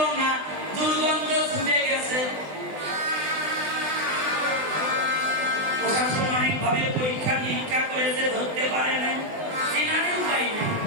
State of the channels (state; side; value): late; left; 20 ms